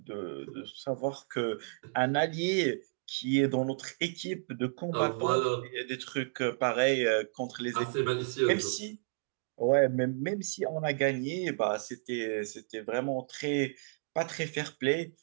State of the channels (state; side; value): silent; left; digital silence